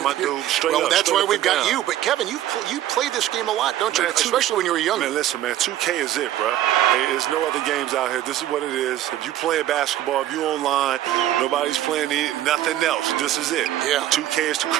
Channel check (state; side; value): quieter; left; 13.0 dB